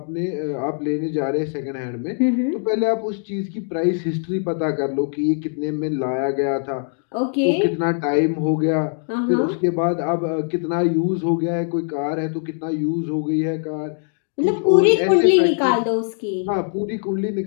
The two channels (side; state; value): right; silent; 60 dB below the other